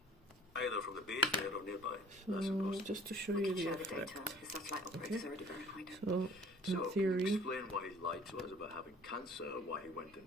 Either from the base there or nearby. That's So impossible. just to show We you can the share the effect. data. The satellite operators already verified it. So So, in can you theory, explain why he lied to us about having cancer, why he went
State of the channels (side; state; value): both; normal; correlation 0.49